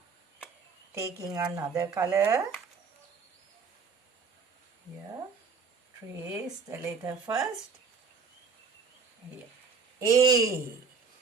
Taking another color. Here, trace the letter first. Here. A.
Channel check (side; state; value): left; quieter; 5.2 dB